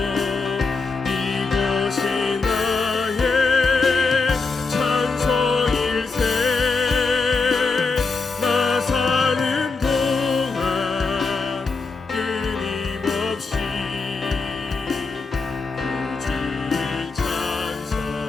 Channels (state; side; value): quieter; right; 4.2 dB